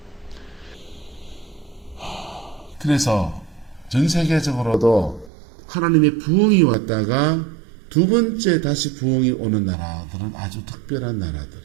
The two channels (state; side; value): drops out; left; at 5.3 s